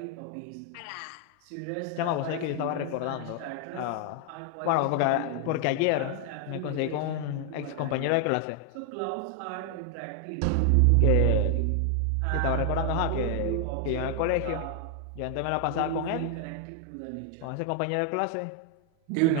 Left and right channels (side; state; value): both; different; correlation 0.00